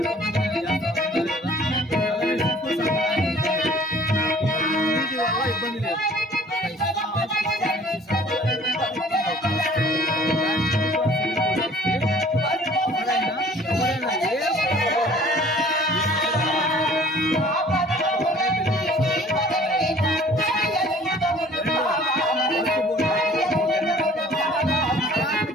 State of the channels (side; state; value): both; normal; correlation 0.52